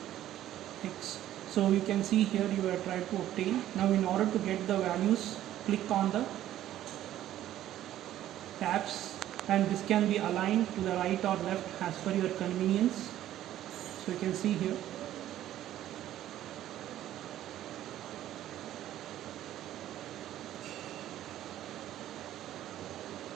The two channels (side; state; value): left; quieter; 12.7 dB